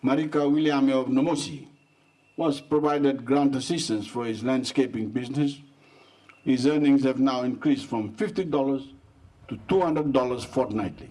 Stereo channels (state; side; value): identical; both; correlation 1.00